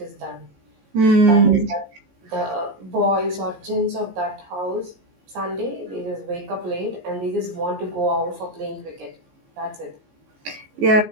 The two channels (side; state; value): left; late; 15 ms